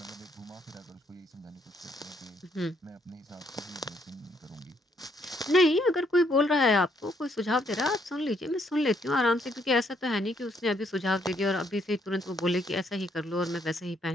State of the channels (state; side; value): normal; both; correlation 0.70